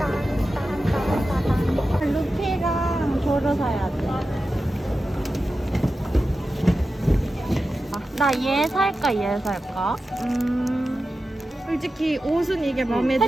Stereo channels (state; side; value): normal; both; correlation 0.92